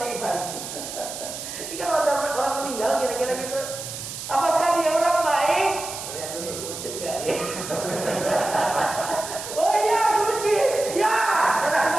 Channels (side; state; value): right; noise; hiss, 8 dB below the sound